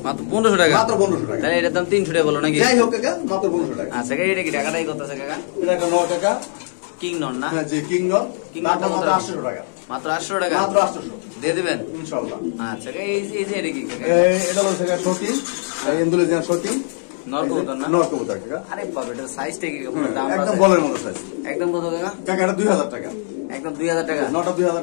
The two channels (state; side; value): silent; right; digital silence